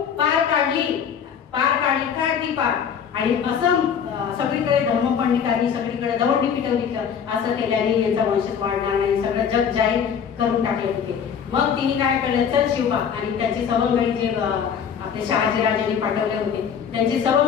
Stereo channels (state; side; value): quieter; right; 7.5 dB